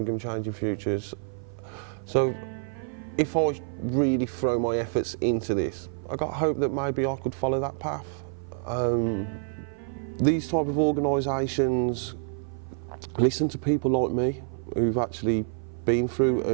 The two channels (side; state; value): left; silent; 55 dB below the other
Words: Changing Futures. So if I really throw my efforts into this, I got hope that maybe I could follow that path. These type of organisations listen to people like me who've actually been through,